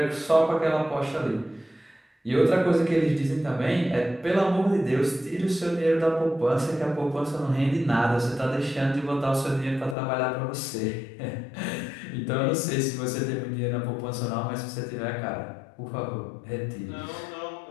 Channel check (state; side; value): drops out; right; at 10.0 s